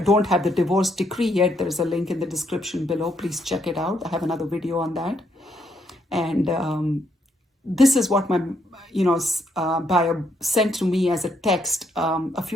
don't have the divorce decree yet, there's a link in the description below. Please check it out. I have another video on that. And this is what my buyer sent to me as a text a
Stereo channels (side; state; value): both; normal; correlation 0.74